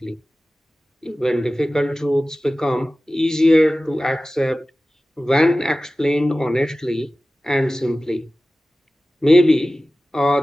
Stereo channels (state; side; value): normal; both; correlation 0.96